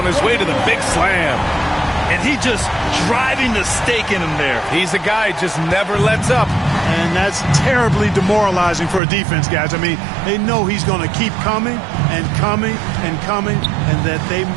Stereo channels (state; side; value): drops out; left; at 9.0 s